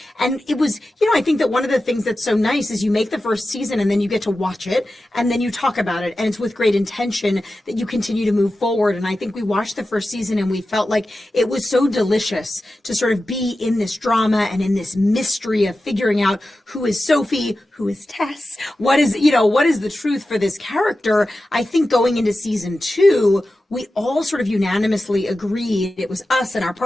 And it was, you know, I think that one of the things that's so nice is you make the first season and then you get to watch it and then you talk about it. And it's with great intention that you continue to move forward. And I think we watched the first season and we felt like it was so delicious to sort of be in this drama and in this mystery of figuring out who is Sophie, who is Tess, what is the truth for this character. I think going into season 2, we all sort of unanimously agreed, it was us and our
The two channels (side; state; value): both; normal; correlation 0.93